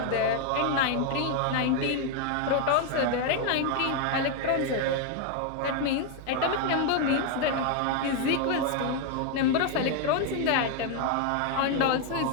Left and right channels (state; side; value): different; both; correlation 0.01